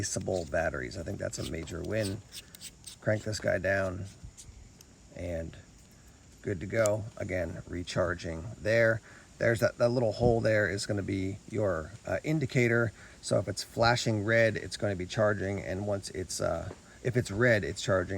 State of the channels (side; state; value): both; identical; correlation 1.00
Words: batteries. I think that's a major win. Crank this guy down and good to go. Again, recharging there. There's that little hole there is going to be your indicator. So if it's flashing red, it's going to be charging, and once it's if it's red, it's